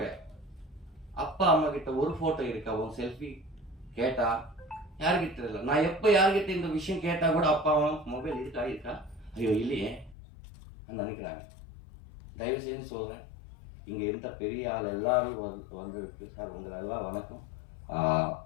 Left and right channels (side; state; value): right; drops out; at 10.2 s